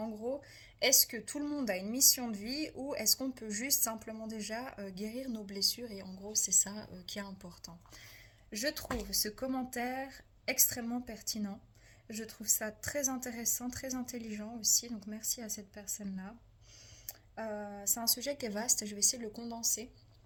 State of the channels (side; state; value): both; identical; correlation 1.00